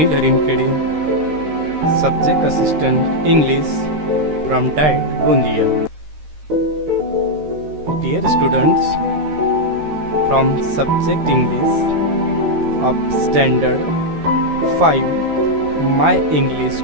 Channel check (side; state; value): left; late; 13 ms